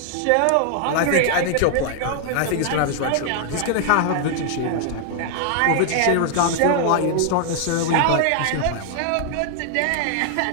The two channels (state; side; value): different; both; correlation 0.00